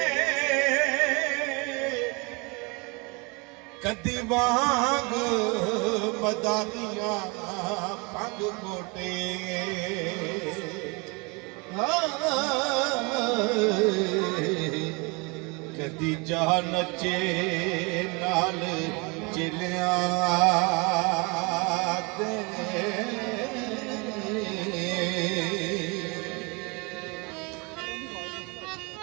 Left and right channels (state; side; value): quieter; left; 29.2 dB